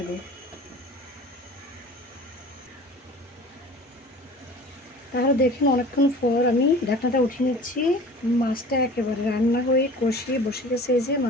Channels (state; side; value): normal; both; correlation 0.42